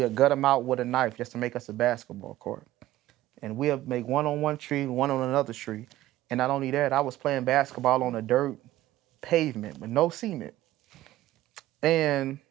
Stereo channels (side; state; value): left; quieter; 15.3 dB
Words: gut them out with a knife just to make us a basketball court. And we'll make one on one tree, one on another tree. And not only that, I was playing basketball on a dirt pavement with no cement. And